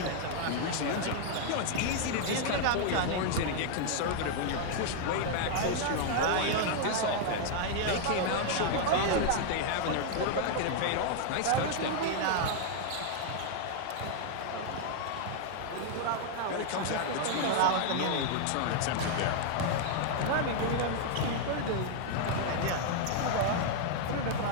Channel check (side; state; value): both; different; correlation 0.00